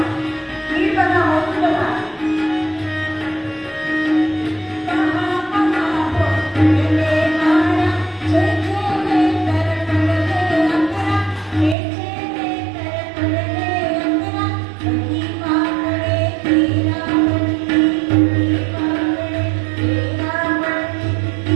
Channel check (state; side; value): drops out; left; at 11.8 s